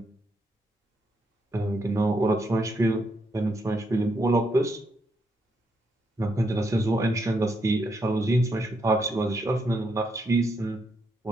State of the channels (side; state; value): both; normal; correlation 0.78